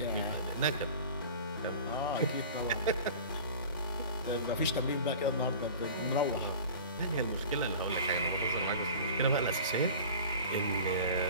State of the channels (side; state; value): both; inverted; correlation -0.39